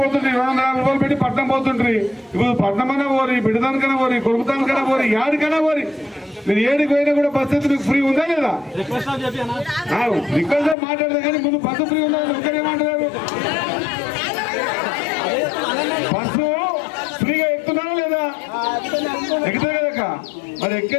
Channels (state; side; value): drops out; right; at 10.8 s